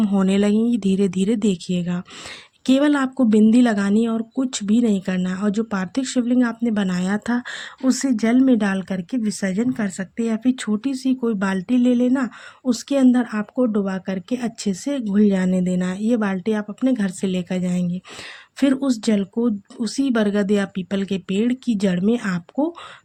होने लगेंगी धीरे धीरे। देखिएगा, केवल आपको बिंदी लगानी है और कुछ भी नहीं करना है। और जो पार्थिव शिवलिंग आपने बनाया था उसे जल में डाल करके विसर्जन कर सकते हैं, या फिर छोटी सी कोई बाल्टी ले लेना, उसके अंदर आपको डुबा करके अच्छे से घुल जाने देना है। ये बाल्टी आप अपने घर से लेकर जाएंगे। फिर उस जल को उसी बरगद या पीपल के पेड़ की जड़ में आपको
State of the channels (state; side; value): identical; both; correlation 1.00